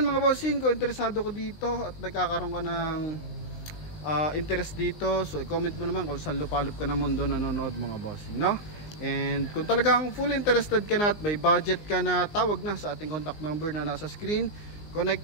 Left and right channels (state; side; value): late; right; 19 ms